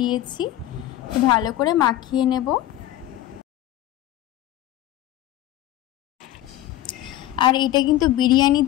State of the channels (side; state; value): right; quieter; 14.0 dB